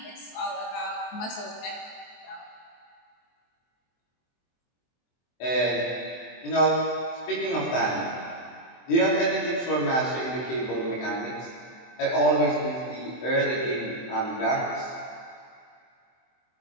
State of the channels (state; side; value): late; right; 23 ms